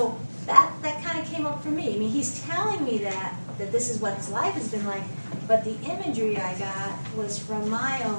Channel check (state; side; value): inverted; both; correlation -1.00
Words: that kind of came up for me. I mean, he's telling me that this is what his life has been like, but the imagery I got was from my